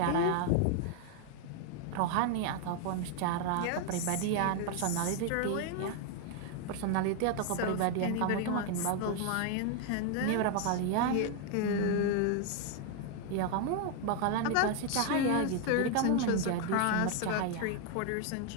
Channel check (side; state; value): both; different; correlation 0.00